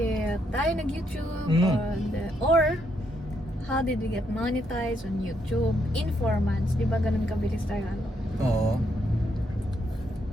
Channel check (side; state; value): both; normal; correlation 0.76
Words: tayo nag-YouTube or how did we get monetized on YouTube in 4 months. Di ba ganun kabilis tayo ano? Oo.